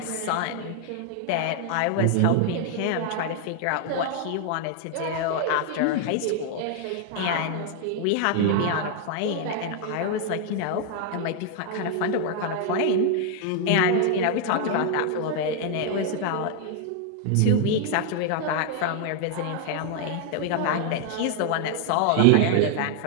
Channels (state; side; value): different; both; correlation 0.00